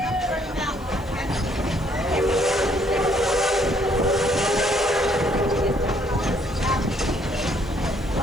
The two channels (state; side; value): noise; right; hiss, 27 dB below the sound